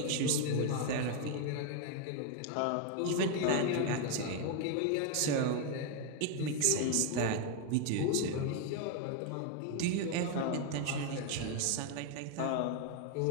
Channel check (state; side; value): different; both; correlation 0.01